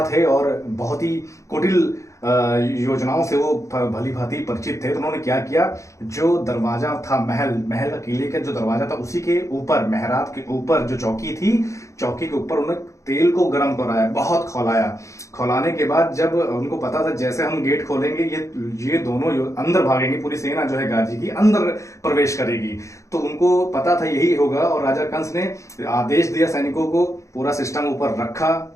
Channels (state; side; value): late; right; 0.15 ms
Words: थे और बहुत ही कुटिल योजनाओं से वो भली भांति परिचित थे, तो उन्होंने क्या किया, जो दरवाजा था महल का किले का जो दरवाजा था, उसी के ऊपर, मेहराब के ऊपर जो चौकी थी, चौकी के ऊपर उन्होंने तेल को गर्म कराया, बहुत खौलाया। खौलाने के बाद जब उनको पता था जैसे हम गेट खोलेंगे ये दोनों अंदर भागेंगे, पूरी सेना जो है गाजी की अंदर प्रवेश करेगी, तो उनको पता था यही होगा। और राजा कंस ने आदेश दिया सैनिकों को, पूरा सिस्टम ऊपर रखा,